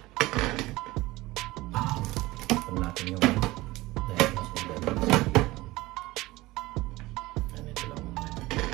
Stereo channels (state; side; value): quieter; left; 19.3 dB